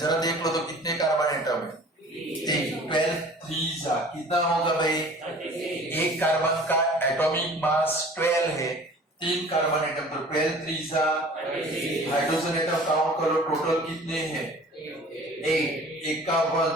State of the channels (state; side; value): normal; both; correlation 0.46